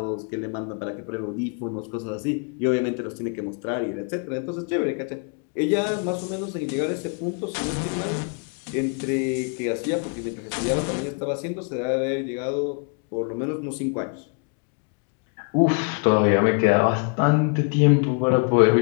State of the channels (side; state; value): right; quieter; 38.0 dB